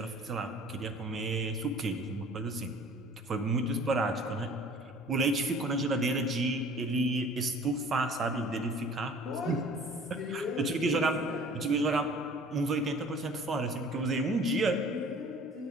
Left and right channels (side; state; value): both; normal; correlation 0.48